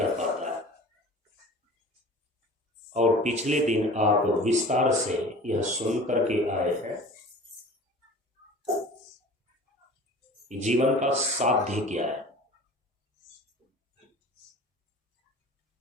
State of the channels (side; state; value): both; normal; correlation 0.41